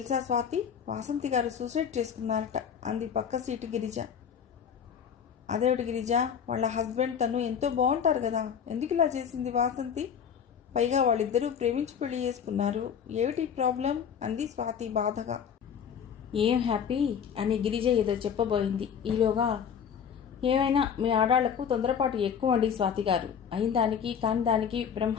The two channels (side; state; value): right; quieter; 7.7 dB